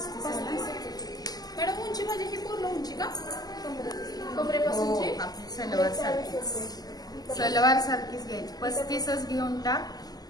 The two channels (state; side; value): late; right; 0.19 ms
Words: आहे ना मॅडम? उंची म्हणजे ही पूर्ण उंची का? हो, कमरेपासूनची आपली सलवार सारखीच घ्यायची. 35च घेऊन टाक,